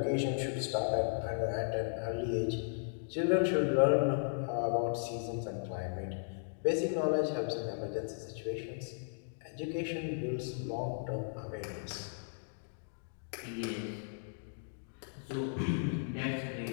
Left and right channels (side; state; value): right; silent; digital silence